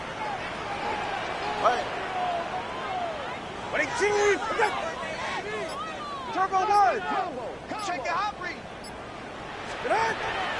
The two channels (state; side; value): identical; both; correlation 1.00